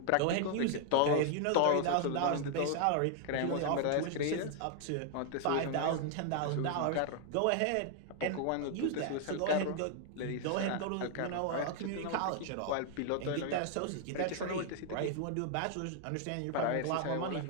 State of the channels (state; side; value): different; both; correlation 0.00